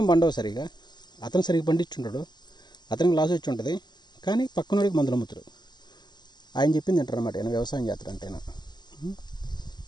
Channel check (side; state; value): right; late; 0.21 ms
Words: పండవు సరిగా, అతను సరిగ్గా పండించుంటాడు, అతనికి లాస్ వచ్చి ఉంటుంది, కానీ పక్కనోడికి మందులు అమ్ముతారు. ఆయన చెప్పింది అంటారు అన్నమాట, ఆయన వ్యవసాయం చేస్తారంటేనా.